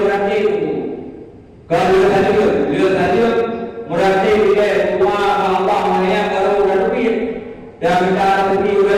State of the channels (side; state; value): both; identical; correlation 1.00